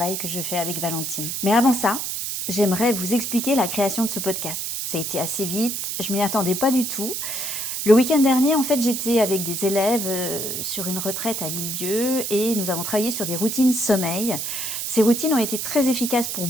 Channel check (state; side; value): noise; right; hiss, 3 dB below the sound